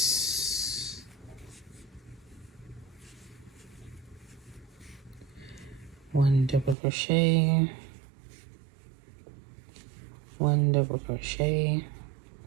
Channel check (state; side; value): drops out; left; at 6.8 s